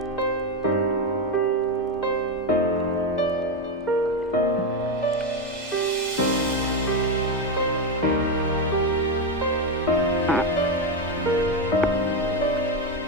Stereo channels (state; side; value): normal; both; correlation 0.10